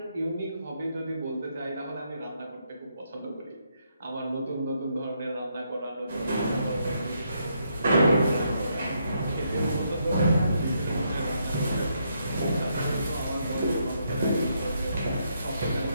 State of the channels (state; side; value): inverted; both; correlation -0.76